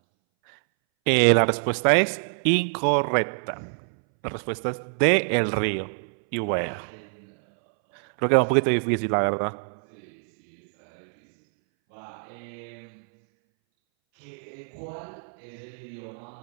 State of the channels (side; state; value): left; silent; 61 dB below the other